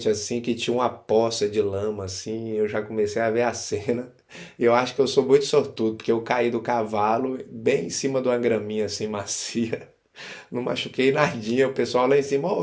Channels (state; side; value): identical; both; correlation 1.00